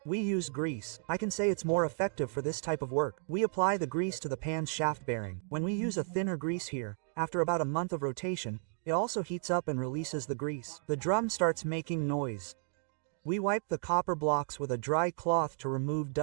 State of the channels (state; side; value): silent; left; 55 dB below the other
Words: We use grease. I can say it's more effective for this type of work. We apply the grease to the pan's shaft bearing. When we use a thinner grease here, after about a month of rotation, it also heats up and releases the grease. The drum starts making noise. We wipe the copper blocks with a dry cloth to remove